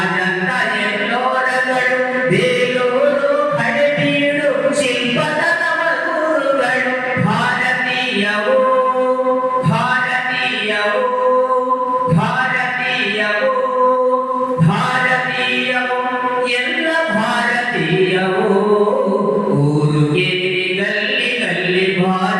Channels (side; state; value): both; identical; correlation 1.00